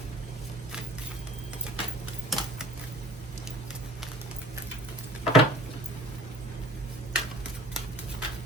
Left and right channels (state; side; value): normal; both; correlation 0.48